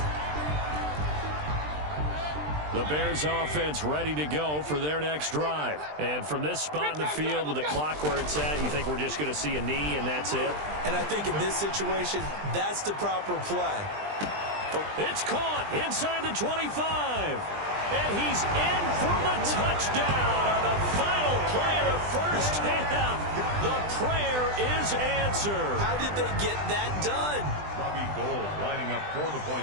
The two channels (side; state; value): left; late; 20 ms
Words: The Bears offense ready to go for their next drive. And from this spot in the field with the clock where it's at, you think we're just going to see a knee and that's it? And I think in this situation, that's the proper play. It's caught inside the 25. And he's in for the touchdown on the final play of the first half. The prayer is answered. How did they get that done? Lining up for the